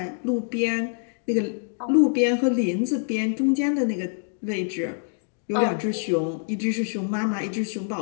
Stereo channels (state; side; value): silent; right; digital silence